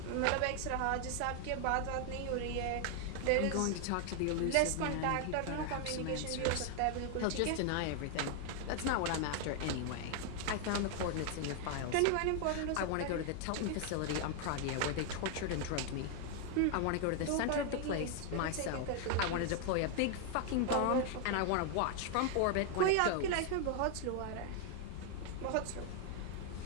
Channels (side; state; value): both; different; correlation 0.00